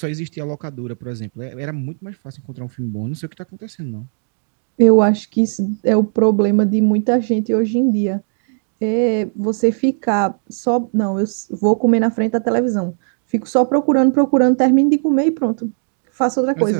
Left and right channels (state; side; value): silent; left; digital silence